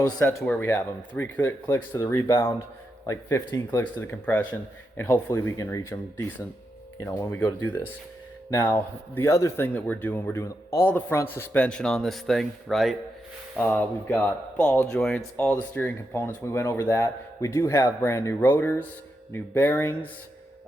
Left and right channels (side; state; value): both; normal; correlation 0.85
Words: set to where we have them. 3 clicks to the rebound, like 15 clicks to the compression, and hopefully we can reach them decent, you know, when we go to do this. Now, the other thing that we're doing all the front suspension on this thing, right? We've got ball joints, all the steering components. We went over that. We do have brand new rotors, new bearings.